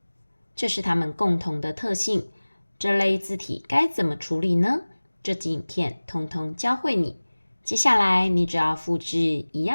这是它们共同的特性。这类字体该怎么处理呢？这集影片通通教会你。接下来你只要复制一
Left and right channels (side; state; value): both; inverted; correlation -1.00